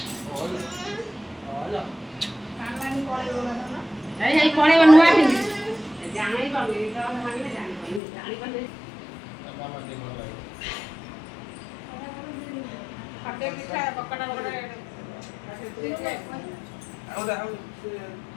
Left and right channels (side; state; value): right; drops out; at 8.0 s